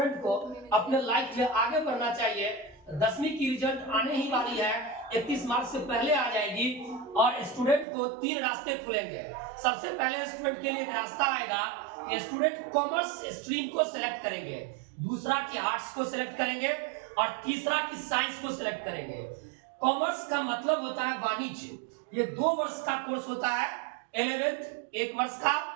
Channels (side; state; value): left; drops out; at 7.9 s